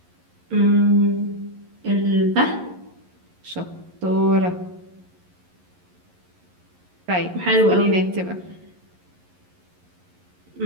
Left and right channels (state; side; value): late; left; 11 ms